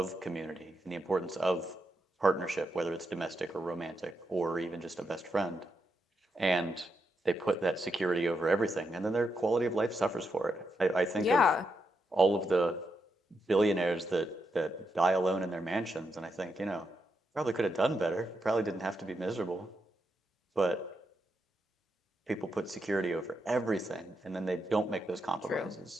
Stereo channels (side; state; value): both; normal; correlation 0.83